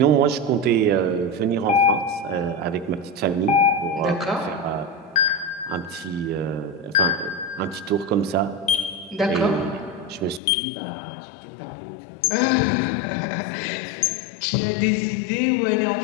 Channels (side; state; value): right; drops out; at 10.4 s